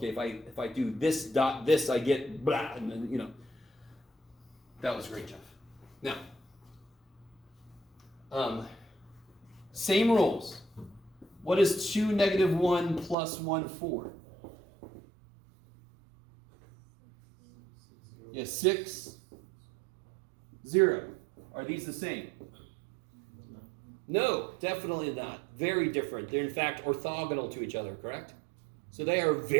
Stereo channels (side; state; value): left; drops out; at 13.2 s